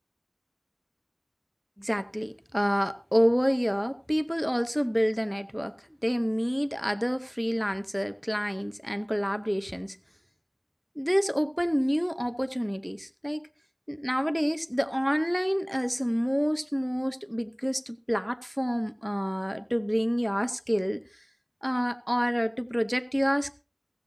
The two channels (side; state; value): both; identical; correlation 1.00